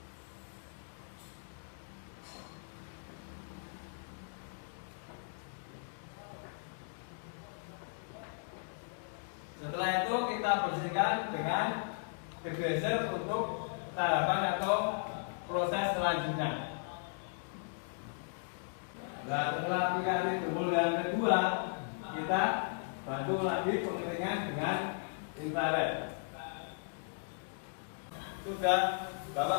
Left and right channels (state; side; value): silent; right; digital silence